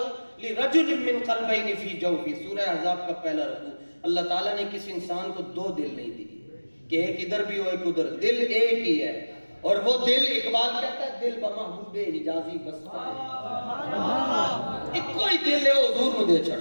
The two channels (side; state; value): both; inverted; correlation -1.00